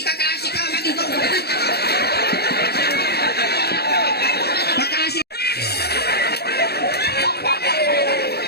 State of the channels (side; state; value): right; late; 0.47 ms